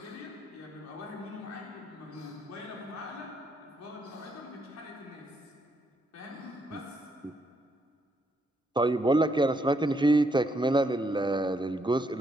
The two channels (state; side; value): normal; both; correlation 0.75